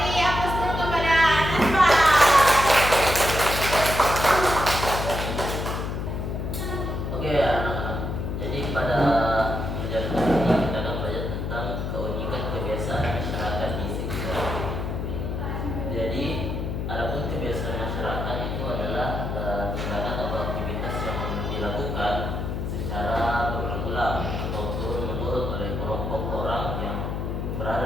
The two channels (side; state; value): left; noise; hum, 3 dB below the sound